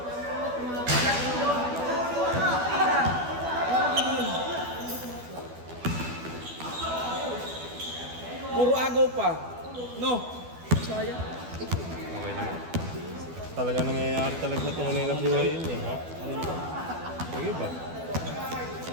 Puro agaw pa. No. Sayang. Okay lang. Talaga nangyayari talaga sa tunay na buhay yun eh, ha? Sige ba?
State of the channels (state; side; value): late; left; 12 ms